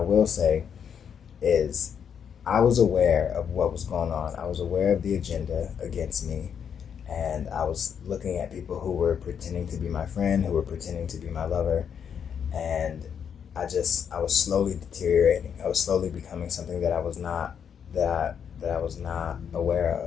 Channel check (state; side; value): quieter; right; 7.7 dB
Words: will say is I was aware of what was going on. I was aware of the agenda against me, and I was looking at people who were pretending to be my friend, who were pretending to be my lover, and I was slowly deteriorating. I was slowly becoming something that I was not that I was not aware